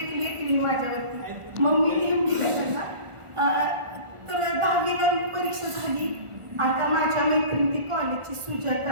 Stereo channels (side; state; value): left; late; 1.4 ms